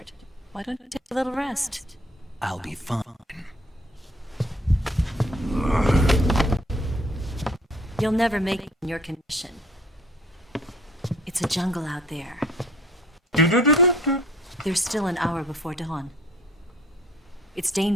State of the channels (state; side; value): normal; both; correlation 0.55